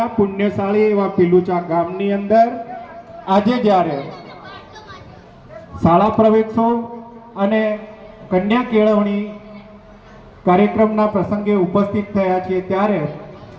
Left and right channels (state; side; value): identical; both; correlation 1.00